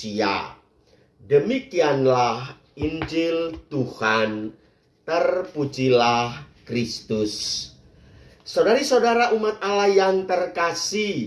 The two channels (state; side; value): identical; both; correlation 1.00